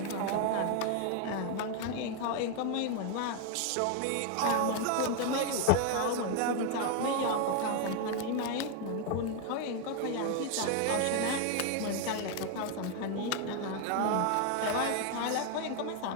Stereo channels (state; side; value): different; both; correlation 0.01